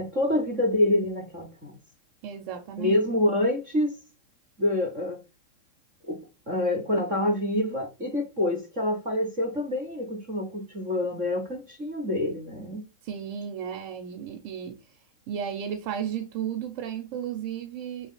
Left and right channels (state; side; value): late; left; 3.7 ms